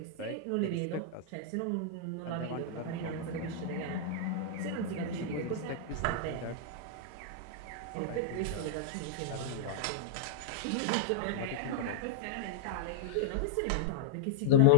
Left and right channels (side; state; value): both; different; correlation -0.01